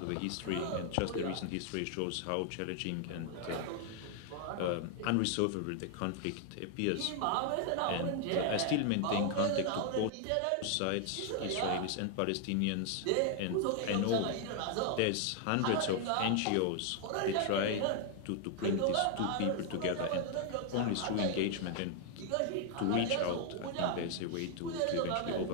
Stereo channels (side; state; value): both; different; correlation 0.00